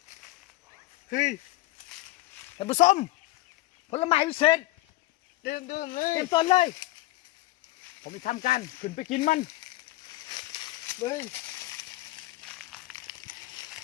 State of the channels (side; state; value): right; quieter; 18.5 dB